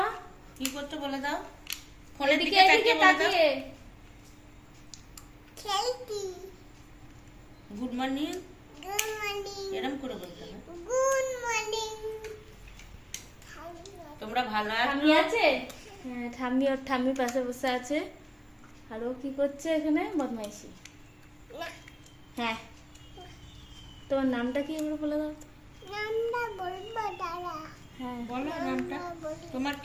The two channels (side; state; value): both; identical; correlation 1.00